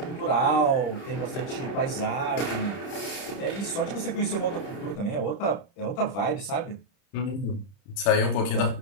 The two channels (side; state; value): right; late; 30 ms